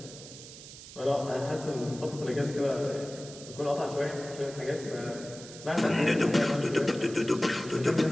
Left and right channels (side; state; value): right; noise; hiss, 15 dB below the sound